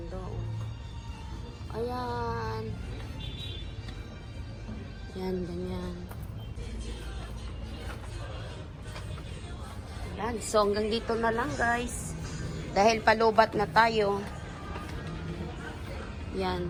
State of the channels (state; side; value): identical; both; correlation 1.00